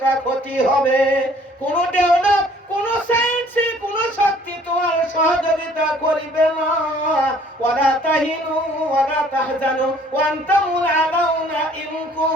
ক্ষতি হবে। কোন ডেভেলপ, কোন সায়েন্স, কোন শক্তি তোমার সহযোগিতা করিবে না। ওয়ালা তাহিনু ওয়ালা তাহজানু ওয়া আনতুমুল আলাউনা ইন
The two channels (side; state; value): both; normal; correlation 0.57